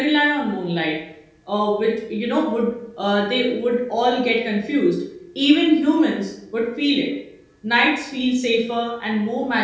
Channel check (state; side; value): identical; both; correlation 1.00